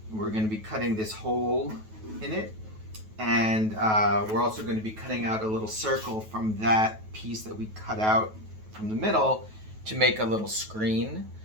We're going to be cutting this hole in it, and we're also going to be cutting out a little circle from that piece that we cut out from the middle to make a little screen,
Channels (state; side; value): late; left; 9.3 ms